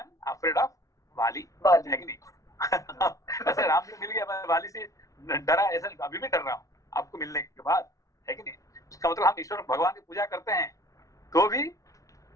afraid of वाली, है कि नहीं? ऐसे राम जी मिल गया, मैं वाली से डरा, ऐसा अभी भी डर रहा हूँ आपको मिलने के बाद, है कि नहीं? उसका मतलब हम ईश्वर भगवान की पूजा करते हैं तो भी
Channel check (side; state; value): right; late; 0.16 ms